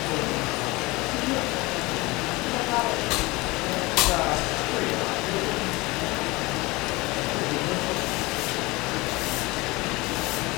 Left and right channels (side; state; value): right; quieter; 22.9 dB